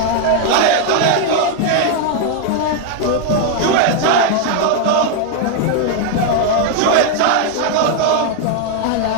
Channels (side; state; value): both; different; correlation 0.00